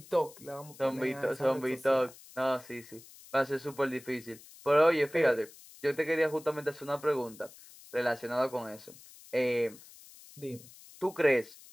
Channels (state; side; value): noise; left; hiss, 20 dB below the sound